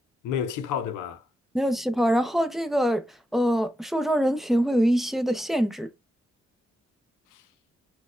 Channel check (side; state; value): both; normal; correlation 0.87